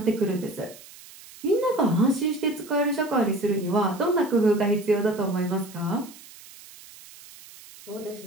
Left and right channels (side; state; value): right; noise; hiss, 20 dB below the sound